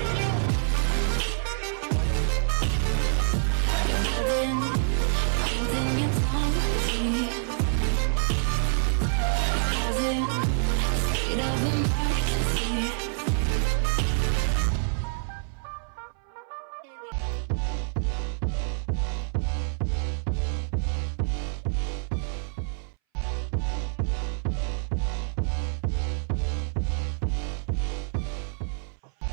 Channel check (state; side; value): silent; left; 60 dB below the other